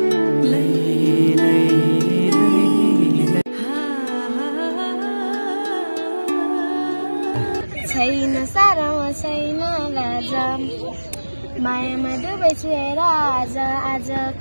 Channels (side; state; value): both; inverted; correlation -1.00